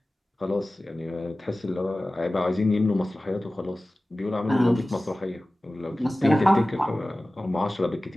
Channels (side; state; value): both; normal; correlation 0.97